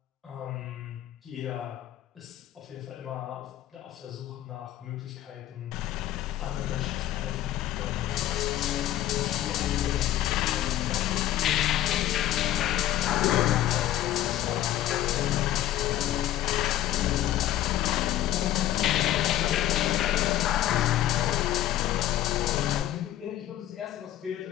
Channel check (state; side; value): quieter; right; 13.1 dB